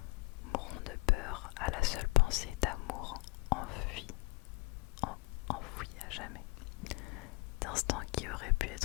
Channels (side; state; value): right; quieter; 24.7 dB